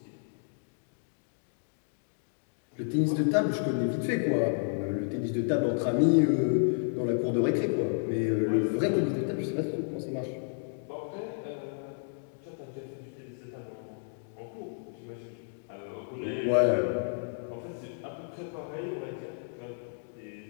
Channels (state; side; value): silent; right; digital silence